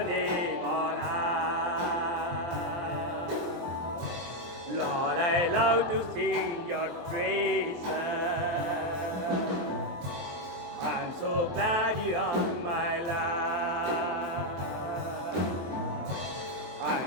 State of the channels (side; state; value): left; late; 23 ms